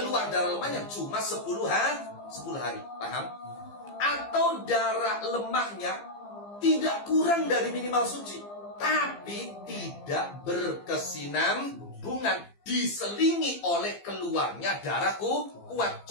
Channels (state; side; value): late; right; 15 ms